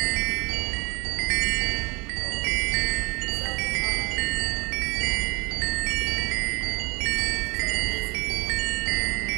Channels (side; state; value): left; quieter; 27.7 dB